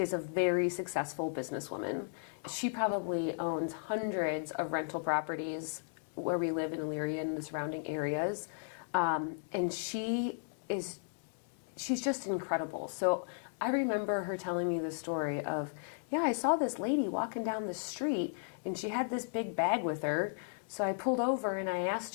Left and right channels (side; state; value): right; silent; digital silence